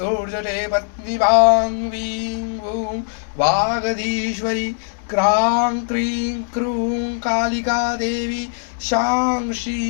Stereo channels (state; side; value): silent; right; digital silence